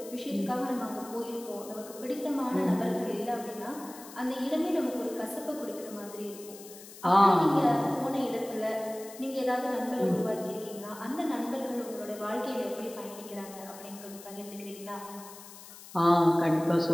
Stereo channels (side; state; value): left; noise; hiss, 17 dB below the sound